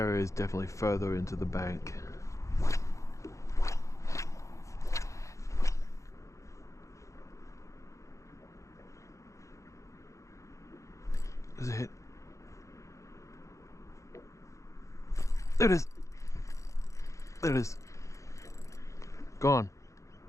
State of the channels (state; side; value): late; right; 0.15 ms